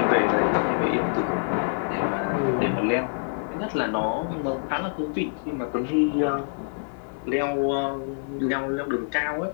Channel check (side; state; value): right; silent; digital silence